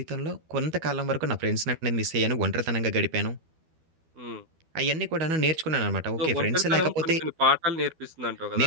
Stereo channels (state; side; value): late; left; 12 ms